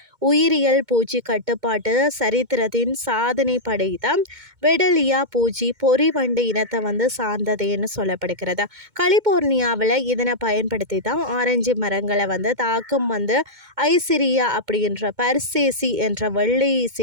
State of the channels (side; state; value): left; late; 2.2 ms